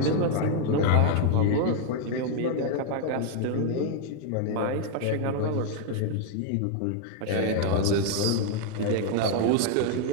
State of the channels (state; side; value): different; both; correlation 0.00